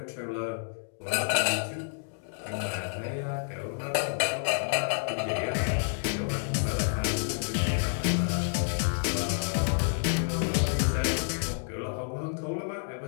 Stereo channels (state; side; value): silent; right; digital silence